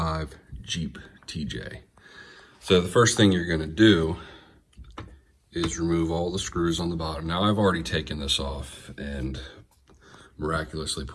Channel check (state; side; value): identical; both; correlation 1.00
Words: Jeep TJ. So the first thing you're going to do is remove all the screws on the bottom. Now I've already taken this off and miraculously